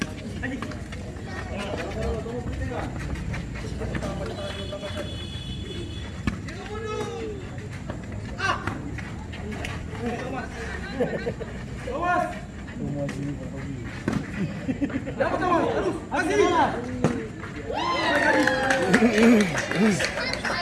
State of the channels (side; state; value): both; identical; correlation 1.00